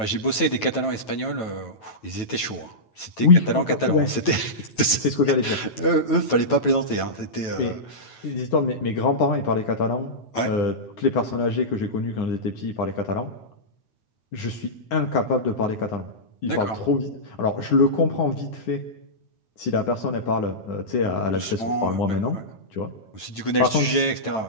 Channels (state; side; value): late; right; 9.1 ms